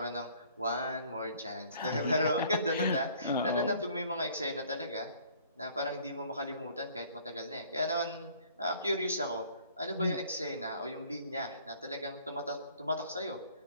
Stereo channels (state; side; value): inverted; both; correlation -0.56